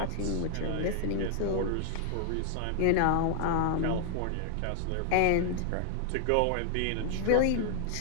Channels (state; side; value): different; both; correlation 0.00